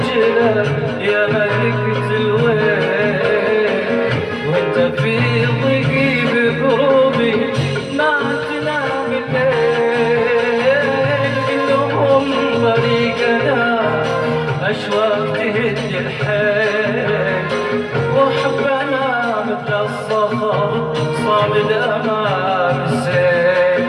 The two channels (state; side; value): identical; both; correlation 1.00